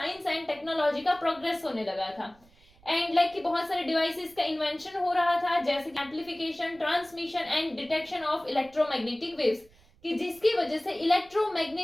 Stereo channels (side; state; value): right; noise; rumble, 28 dB below the sound